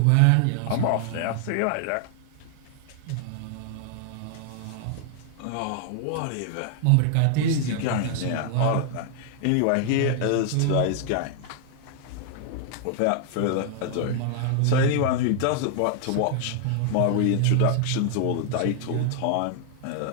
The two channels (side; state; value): both; different; correlation 0.00